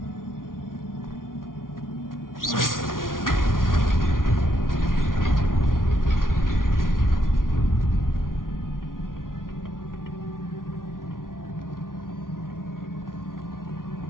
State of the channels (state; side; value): late; right; 0.90 ms